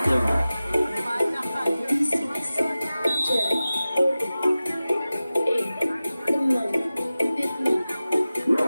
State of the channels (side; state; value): both; inverted; correlation -0.96